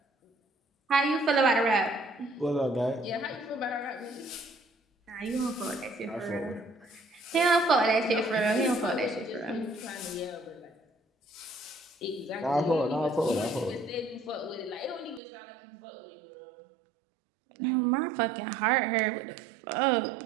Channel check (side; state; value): left; drops out; at 15.2 s